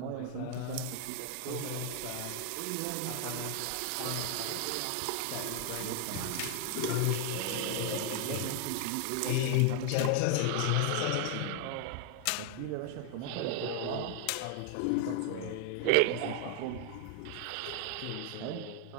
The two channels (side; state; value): both; different; correlation 0.00